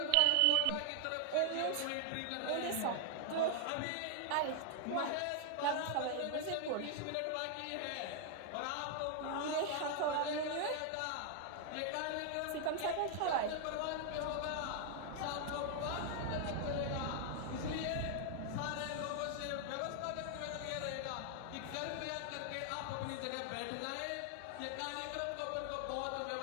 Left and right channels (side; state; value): both; different; correlation 0.00